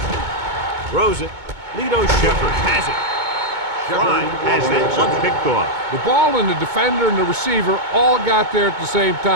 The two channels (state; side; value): late; left; 2.2 ms